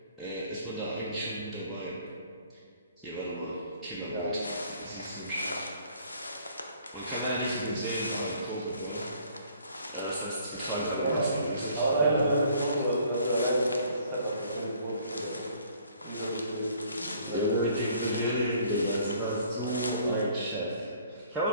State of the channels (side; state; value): both; inverted; correlation -0.58